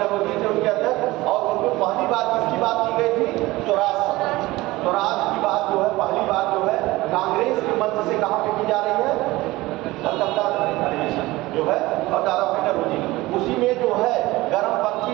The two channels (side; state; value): left; quieter; 19.4 dB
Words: थे उनके अध्यक्ष। और उसमें पहली बार किसकी बात की गई थी? स्वराज की बात जो है पहली बार जो है कांग्रेस के मंच से कहाँ पे की जा रही है? कलकत्ता अधिवेशन जो है और दादा भाई नौरोजी। उसी में जो है गर्मपंथी